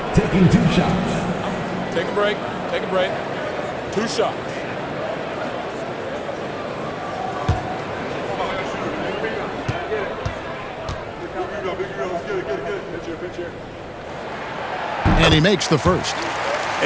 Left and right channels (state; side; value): identical; both; correlation 1.00